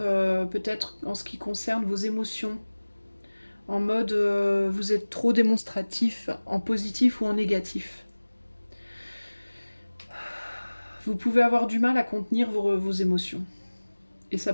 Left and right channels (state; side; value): inverted; both; correlation -1.00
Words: en ce qui concerne vos émotions, en mode vous êtes trop démonstratif, en positif ou en négatif. Vous pouvez avoir du mal à contenir vos émotions, et ça